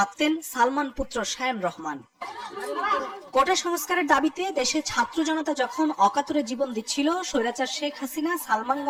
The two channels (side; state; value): both; identical; correlation 1.00